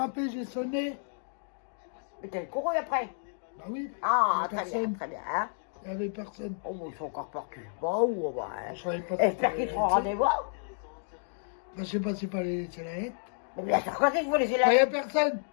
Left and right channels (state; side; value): silent; right; digital silence